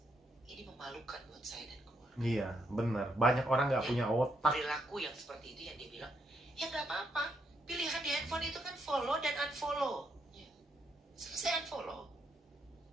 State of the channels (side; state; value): both; normal; correlation 0.77